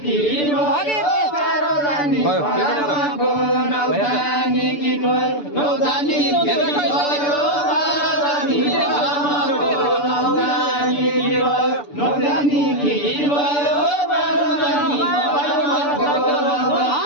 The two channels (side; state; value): right; late; 6.9 ms